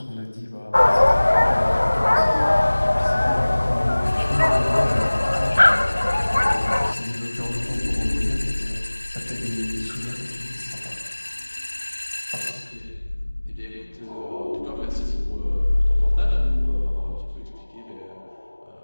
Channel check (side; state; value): both; inverted; correlation -1.00